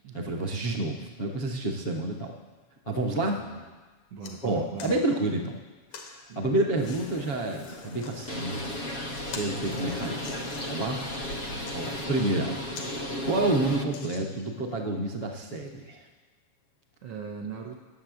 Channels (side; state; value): right; late; 7.3 ms